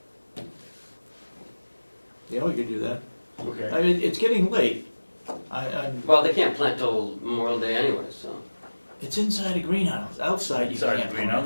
yeah, we could do that. okay. I mean, it's getting late. I'm, Well, they can't plant till Memorial Day anyway, so. it's inside a greenhouse, outside you Inside can't the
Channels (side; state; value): both; inverted; correlation -1.00